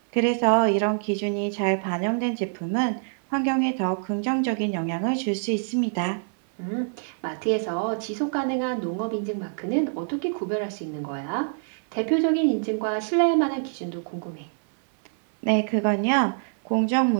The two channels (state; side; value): silent; left; 61 dB below the other